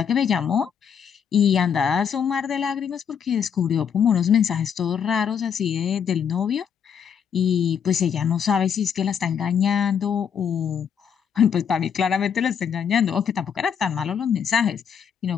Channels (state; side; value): quieter; right; 7.6 dB